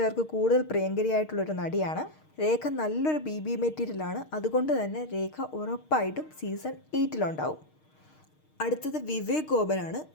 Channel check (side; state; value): right; late; 6.5 ms